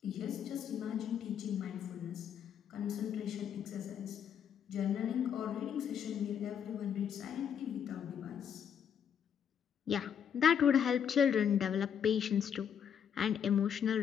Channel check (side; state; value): right; quieter; 8.2 dB